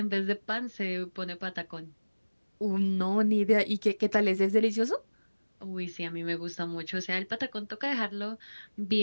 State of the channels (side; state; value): both; inverted; correlation -1.00